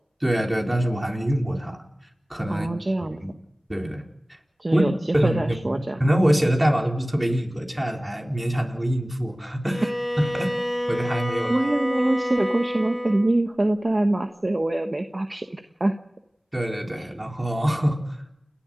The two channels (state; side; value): normal; both; correlation 0.98